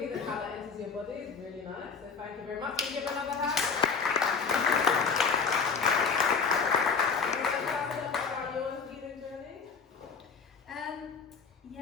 and how that enters your body is really nice. So thank you very much. Can you give another hand? About your healing journey?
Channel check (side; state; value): right; quieter; 5.5 dB